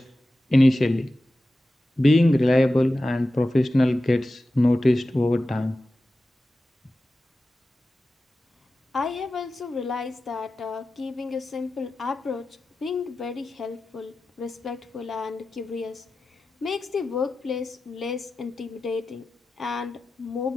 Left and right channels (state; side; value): normal; both; correlation 0.94